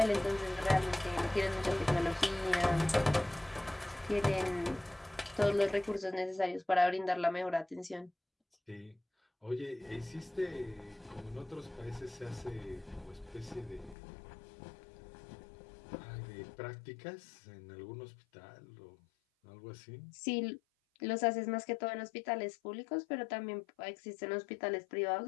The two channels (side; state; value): right; drops out; at 14.0 s